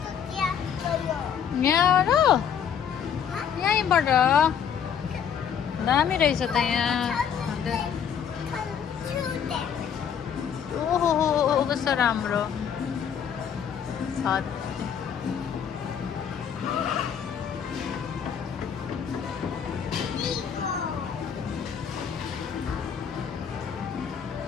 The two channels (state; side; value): quieter; right; 8.0 dB